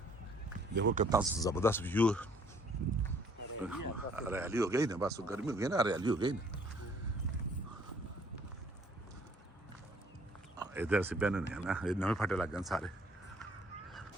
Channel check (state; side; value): normal; both; correlation 0.61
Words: ਦੇਖੋ ਕਿੰਨਾ ਜ਼ਬਰਦست ਵਿਊ हरियाली हो गई ना बस गर्मी हो गई ना हरियाली हो गई ना इधर से बहने नहीं है ना नवे फटे लग गए सारे